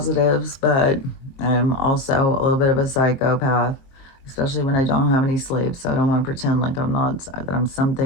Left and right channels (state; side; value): late; right; 22 ms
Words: but I'm also a little bit of a psychopath, especially when I don't have any sleep. So I don't want to pretend like that I'm